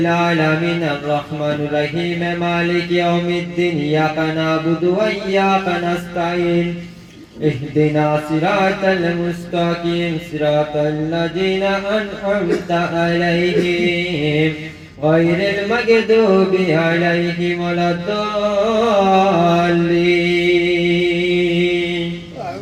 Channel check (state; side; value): identical; both; correlation 1.00